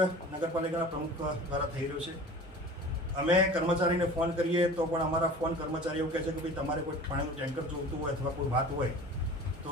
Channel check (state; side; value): normal; both; correlation 0.40